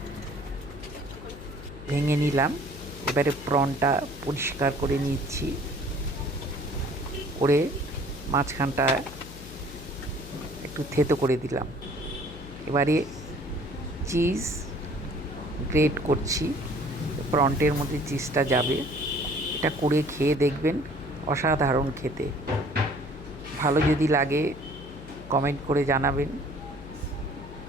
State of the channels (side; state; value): left; noise; hum, 14 dB below the sound